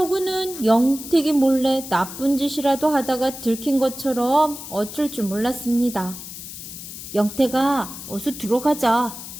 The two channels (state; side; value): noise; left; hiss, 11 dB below the sound